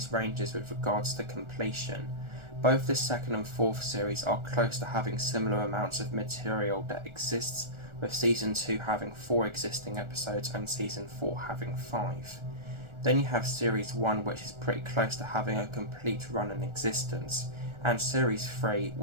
ranges with regards to completion. Both the second and fourth series are close to having similar amounts of material that exists, with Season 2 having 4 existing episodes and Season 4 having 5. Then you have Series 1, which is pretty close to having a complete run in existence, and Series 3,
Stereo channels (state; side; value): late; left; 1.4 ms